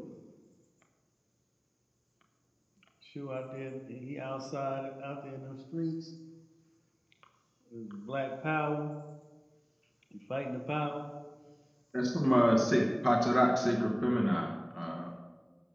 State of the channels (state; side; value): identical; both; correlation 1.00